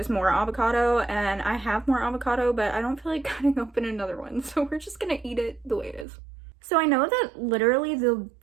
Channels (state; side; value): drops out; left; at 6.1 s